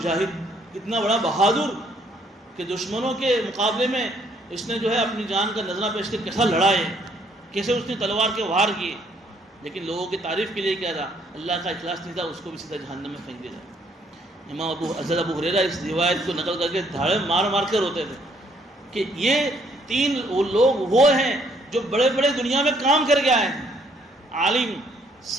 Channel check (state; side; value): normal; both; correlation 0.66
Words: کتنا بڑا بہادر، کہ دشمنوں کے مقابلے میں اس نے جو ہے اپنی جان کا نذرانہ پیش کر کیسا لڑا ہے، کیسے اس نے تلوار کے وار کیے، لیکن لوگوں کی تعریف کے لیے کیا تھا؟ اللہ کا اخلاص نہیں تھا، اس کو بھی سیدھا جہنم میں پھینک دیا۔ امام حضرت ابو ہریرہ اس روایت کو نقل کر کے دھاڑے مار مار کر روتے تھے کہ یہ 3 لوگ وہ ہیں جو بڑے بڑے دنیا میں کام کر کے آئے ہیں، عالم،